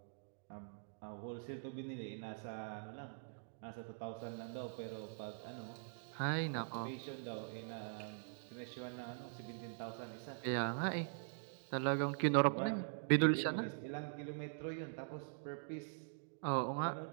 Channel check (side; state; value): left; silent; digital silence